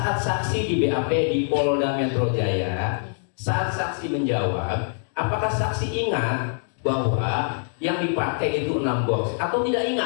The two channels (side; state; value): right; silent; digital silence